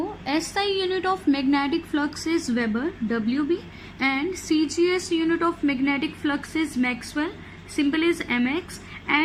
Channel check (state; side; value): identical; both; correlation 1.00